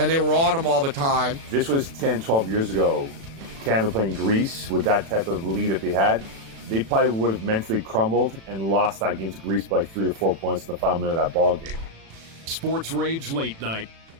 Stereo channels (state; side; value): late; left; 36 ms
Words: they were on him all the time. This was 10, 12 years ago. Canada playing Greece with that type of lead that they had. They probably would have mentally crumbled and lost that game to Greece by like 3 or 4 points in the final minute of that ball game. Sports Rage Late Night.